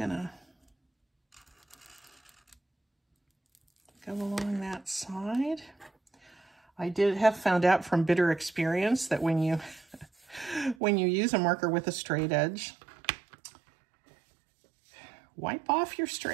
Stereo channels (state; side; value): drops out; left; at 10.8 s